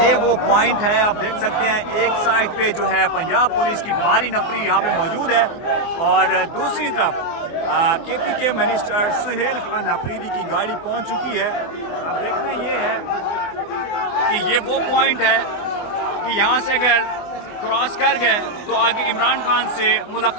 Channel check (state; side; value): late; right; 24 ms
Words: वो पॉइंट है, आप देख सकते हैं एक साइड पे जो है पंजाब पुलिस की भारी नफरी यहाँ पे मौजूद है और दूसरी तरफ केपी के मिनिस्टर सुहेल खान अफरीदी की गाड़ी पहुँच चुकी है। अब देखना ये है कि ये वो पॉइंट है कि यहाँ से अगर क्रॉस कर गए तो आगे इमरान खान से